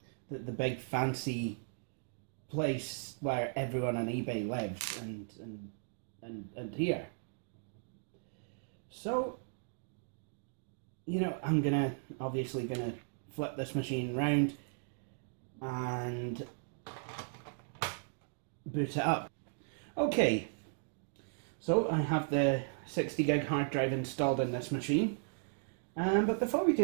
big fancy place where everyone on eBay lives and here. So, you know, I'm obviously gonna flip this machine round and boot it up. Okay, so I have the 60 gig hard drive installed in this machine, but before we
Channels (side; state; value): left; silent; digital silence